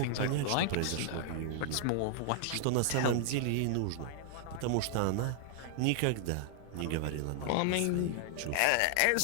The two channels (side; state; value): both; different; correlation -0.01